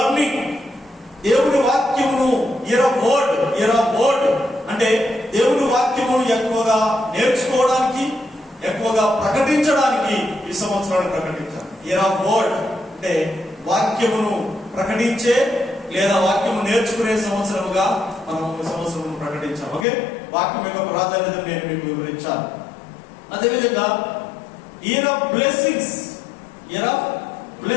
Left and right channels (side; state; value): right; drops out; at 19.9 s